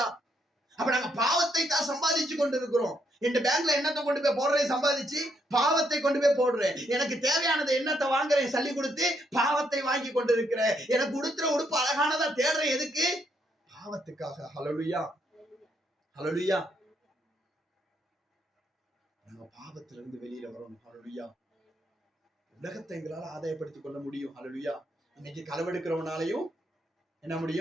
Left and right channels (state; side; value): normal; both; correlation 0.75